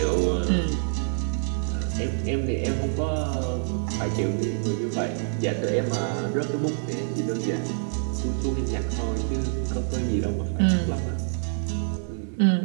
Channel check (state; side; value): silent; left; 61 dB below the other